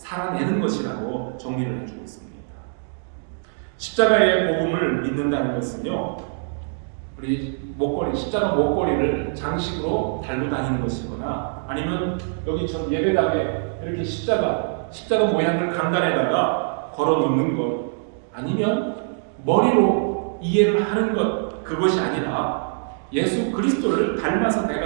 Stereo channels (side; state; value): left; silent; digital silence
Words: 것이라고 정리를 해주고 있습니다. 십자가의 복음을 믿는다는 것은요, 우리 십자가 목걸이를 장식으로 달고 다니는 것이거나, 아니면 여기 전 예배당에 이렇게 십자가 모양을 강단에다가 걸어 놓는 것, 아니면 머리로 이해를 하는 것, 그것이 아니라 예수 그리스도를 닮아서